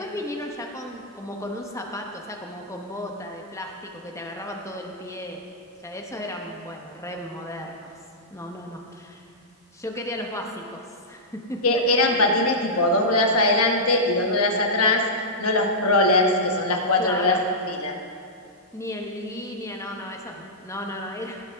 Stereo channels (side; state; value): both; normal; correlation -0.13